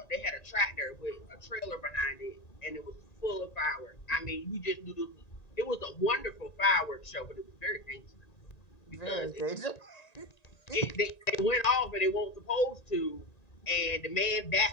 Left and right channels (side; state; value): right; late; 1.9 ms